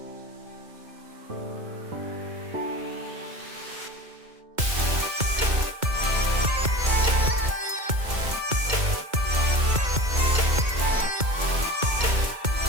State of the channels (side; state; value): left; late; 2.2 ms